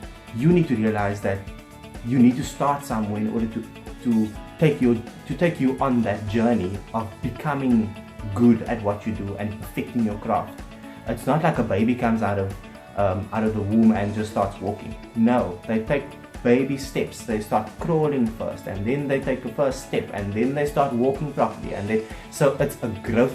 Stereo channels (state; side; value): identical; both; correlation 1.00